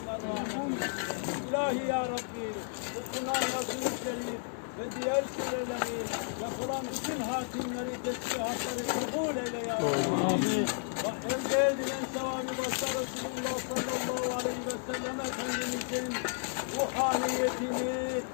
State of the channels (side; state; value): right; silent; 56 dB below the other